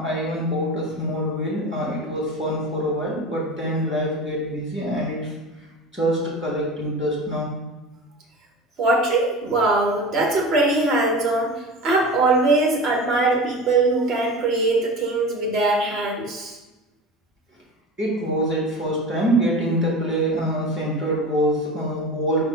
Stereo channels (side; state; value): both; normal; correlation 0.31